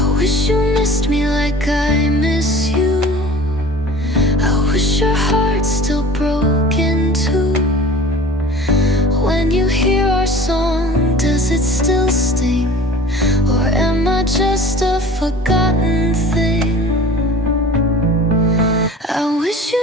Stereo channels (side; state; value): both; normal; correlation 0.42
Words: wish you missed me like I miss you. I wish your heart's still broken too. When you hear our song, does it still sting? Or am I just a forgotten thing? I wish